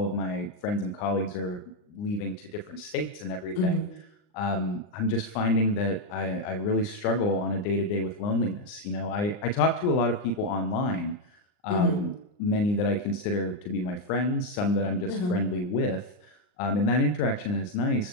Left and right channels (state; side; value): late; right; 39 ms